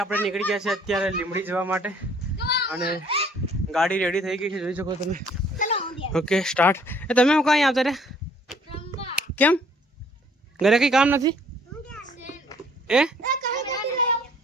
આપણે નીકળી ગયા છે અત્યારે લીમડી જવા માટે અને ગાડી રેડી થઈ ગઈ છે જોઈ શકો તમે ઓકે સ્ટાર્ટ એ તમે હું કાંઈ આવતા રે કેમ ઘરે કંઈ કામ નથી એ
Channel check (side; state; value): both; normal; correlation 0.59